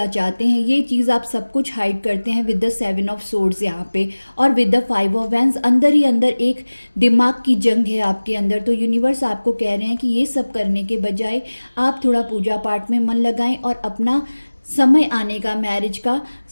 चाहते हैं, ये चीज़ आप सब कुछ हाइड करते हैं विद द 7 ऑफ सोर्ड्स यहाँ पे, और विद द 5 ऑफ वैंस। अंदर ही अंदर एक दिमाग की जंग है आपके अंदर। तो यूनिवर्स आपको कह रहे हैं कि ये सब करने के बजाय आप थोड़ा पूजा पाठ में मन लगाएं, और अपना समय आने का, मैरिज का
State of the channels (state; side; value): inverted; both; correlation -1.00